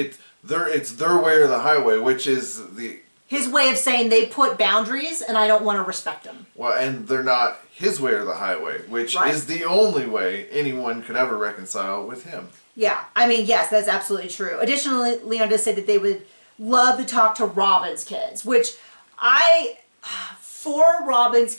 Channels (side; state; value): both; inverted; correlation -1.00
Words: their way or the highway, which is his way of saying they put boundaries and I don't want to respect them. Well, and they're not his way or the highway, which is the only way anyone could ever reconcile with him. Yeah, I mean, yes, that's absolutely true. Additionally, Leon does say that they would love to talk to Robin's kids, which for Robin's